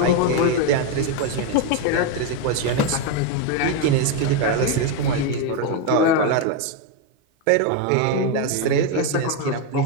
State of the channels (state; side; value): different; both; correlation 0.02